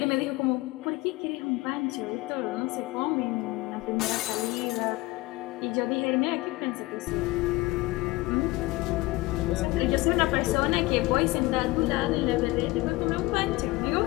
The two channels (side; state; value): right; quieter; 21.1 dB